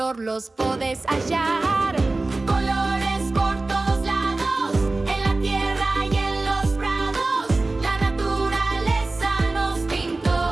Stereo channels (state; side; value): quieter; left; 3.2 dB